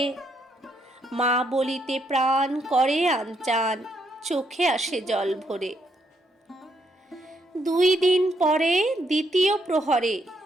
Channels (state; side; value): normal; both; correlation 0.75